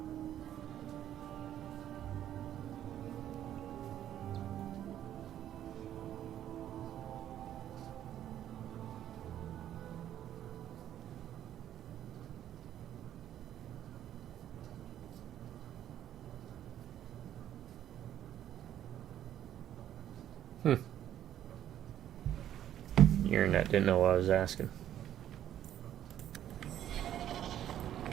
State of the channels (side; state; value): left; quieter; 11.2 dB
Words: Internet didn't know what I was asking.